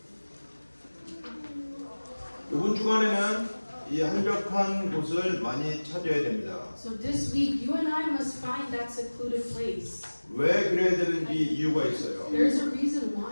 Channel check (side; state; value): both; inverted; correlation -1.00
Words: 이번 주간에는 이 한적한 곳을 많이 찾아야 됩니다. So this week you and I must find that secluded place. 왜 그래야 되는지 이유가 있어요. There's a reason